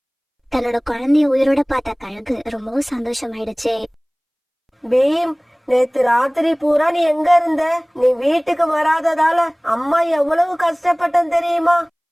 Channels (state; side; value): identical; both; correlation 1.00